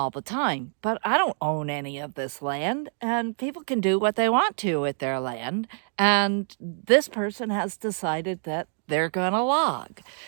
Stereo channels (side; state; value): left; silent; digital silence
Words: the time, but I don't own any of this land, and people can do what they want to with their land. And this person has decided that they're going to log.